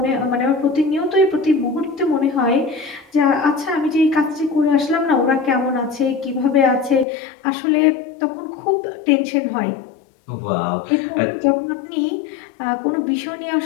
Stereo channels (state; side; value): drops out; right; at 7.1 s